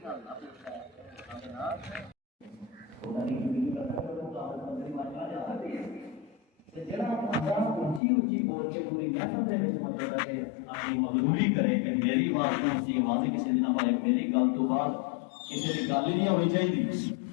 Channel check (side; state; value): right; drops out; at 8.0 s